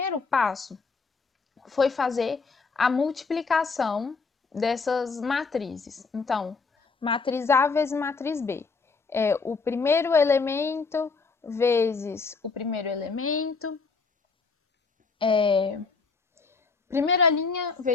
passo foi fazer a multiplicação dessas matrizes. Então, matriz A vezes matriz B. É o primeiro elemento vezes o primeiro elemento, primeira linha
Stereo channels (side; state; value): right; quieter; 4.6 dB